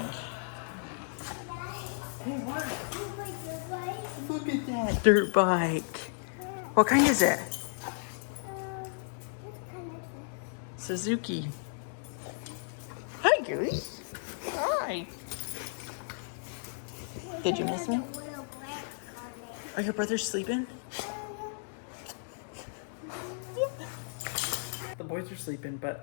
Hey, what? Look at that dirt bike. What kind is it? Suzuki. Hi, Goose. Hi. Did you miss me? Are your brothers sleeping? The boys are sleeping,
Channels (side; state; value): right; silent; 55 dB below the other